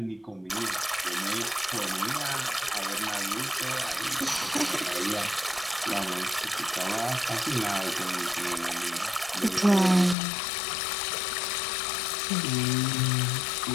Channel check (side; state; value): right; drops out; at 10.2 s